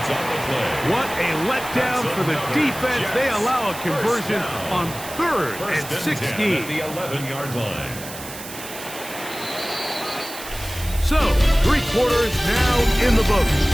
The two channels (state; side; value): noise; right; hiss, 12 dB below the sound